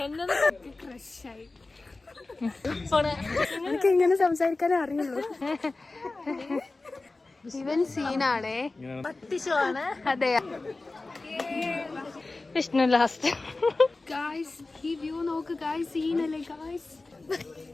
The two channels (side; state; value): right; quieter; 3.3 dB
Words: ക്രഷായി. എനിക്ക് ഇങ്ങനെ സംസാരിക്കാനേ അറിയുള്ളൂ. ഇവൻ സീനാണേ, പട്ടിഷമാണ്. അതെ. വിഷ്ണു ലാസ്റ്റ്. ഗായ്സ് ഈ വ്യൂ നോക്ക് ഗായ്സ്, സീനല്ലേ ഗായ്സ്.